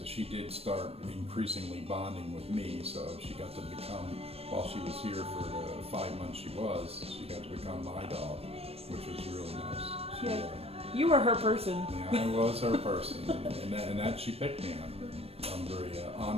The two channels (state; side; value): late; left; 0.29 ms